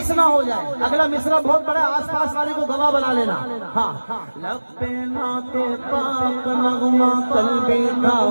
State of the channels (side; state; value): both; inverted; correlation -1.00